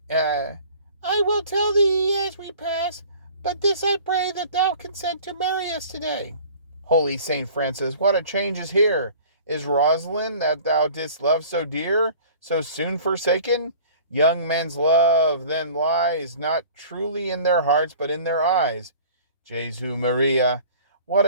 I will tell thee as we pass, but this I pray that thou consent to marry us today. Holy Saint Francis, what a change is here! Is Rosalind, that thou didst love so dear, so soon forsaken? Young men's love then lies not truly in their hearts, but in their eyes. Jesu Maria, what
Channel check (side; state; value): both; inverted; correlation -0.46